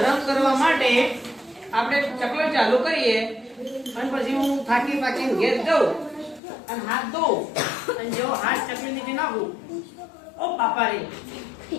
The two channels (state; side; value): drops out; right; at 6.4 s